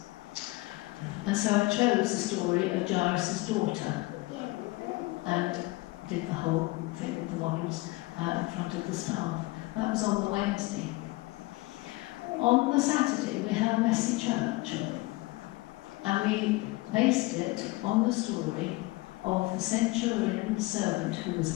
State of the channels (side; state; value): right; quieter; 21.9 dB